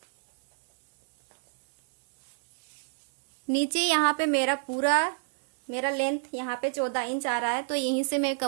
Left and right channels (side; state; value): left; silent; digital silence